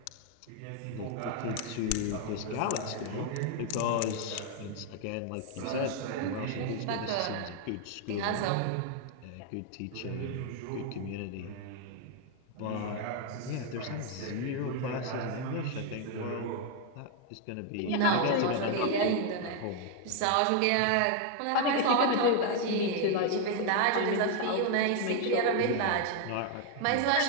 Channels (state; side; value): different; both; correlation 0.00